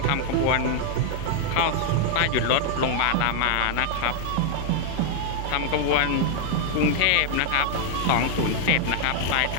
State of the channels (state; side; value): different; both; correlation 0.00